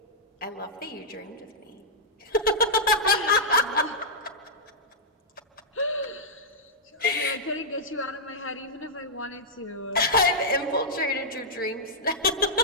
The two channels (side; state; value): both; normal; correlation -0.09